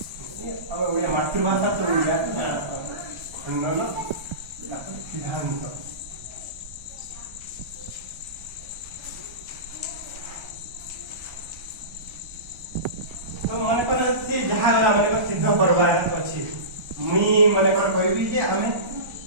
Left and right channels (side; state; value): left; late; 1.3 ms